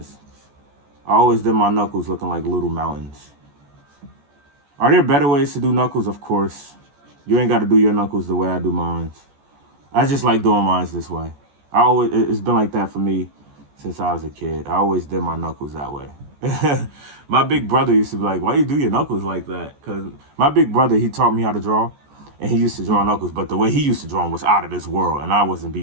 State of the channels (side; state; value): left; late; 14 ms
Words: I always did my knuckles looking like little mountains. Are there better ways to do knuckles? Of course. You ain't got to do your knuckles the way I do mine. I just like doing mine this way. It's been like that for me since I was a kid. I always did my knuckles that way. My big brother used to be like, why you do your knuckles like that? Because my big brother, he taught me how to draw, and he used to draw knuckles, but the way he used to draw them was out of this world, and I wasn't